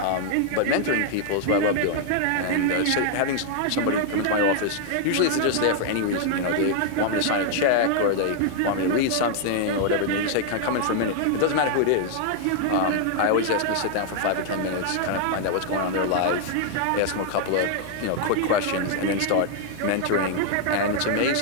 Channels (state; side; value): different; both; correlation 0.00